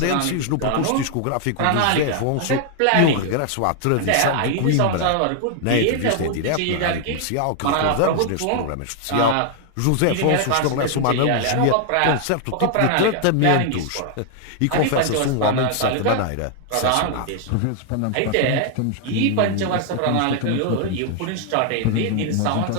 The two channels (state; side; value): different; both; correlation 0.00